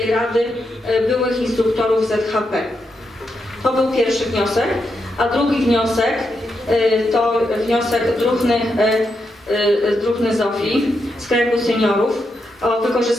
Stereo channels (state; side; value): normal; both; correlation 0.83